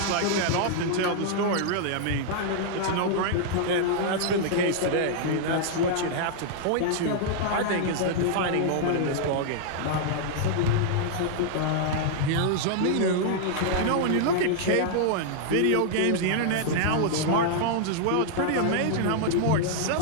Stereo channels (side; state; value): both; different; correlation -0.01